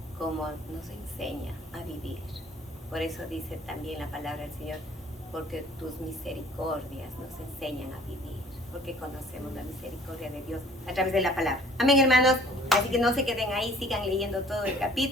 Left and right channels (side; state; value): both; normal; correlation 0.54